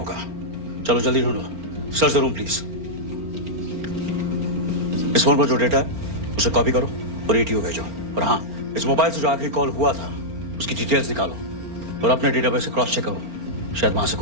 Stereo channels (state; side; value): late; left; 4.4 ms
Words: चलो जल्दी ढूंढो। Search the room please. इस फोन पर जो डेटा है उसे कॉपी करो और एटीओ भेजो। और हाँ, इस मोबाइल से जो आखिरी कॉल हुआ था उसकी डिटेल्स निकालो और अपने डेटाबेस से क्रॉस चेक करो। शायद वहां से